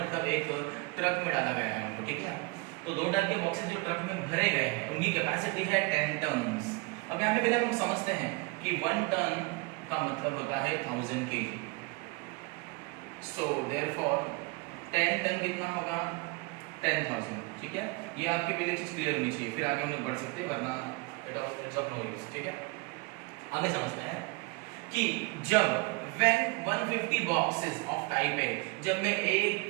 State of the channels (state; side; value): quieter; left; 27.2 dB